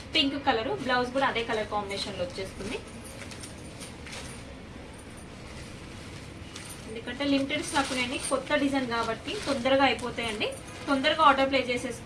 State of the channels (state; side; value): identical; both; correlation 1.00